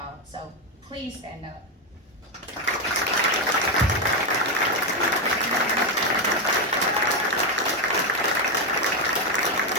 So please stand up.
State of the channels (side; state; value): both; normal; correlation 0.07